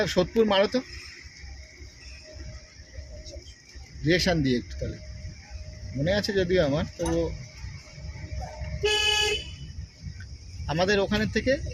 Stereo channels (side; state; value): both; identical; correlation 1.00